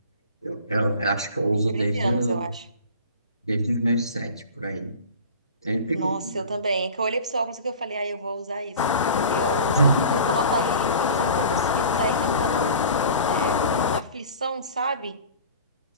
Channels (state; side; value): inverted; both; correlation -0.41